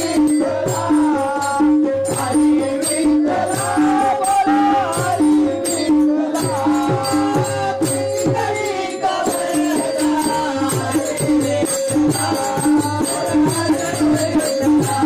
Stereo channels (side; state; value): both; identical; correlation 1.00